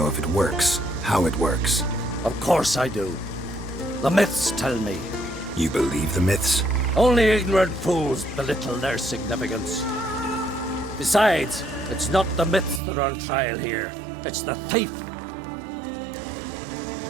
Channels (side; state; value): left; drops out; at 12.8 s